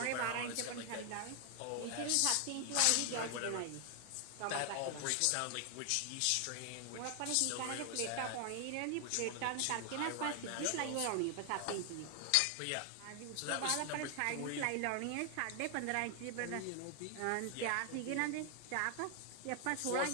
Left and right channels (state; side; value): different; both; correlation 0.00